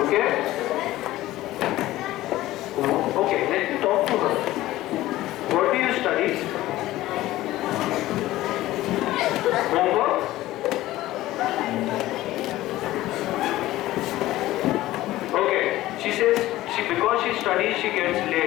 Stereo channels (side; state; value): right; quieter; 16.1 dB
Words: Okay? Okay, let me talk to her. What do you study? Homework? Okay, she says because she studies she gets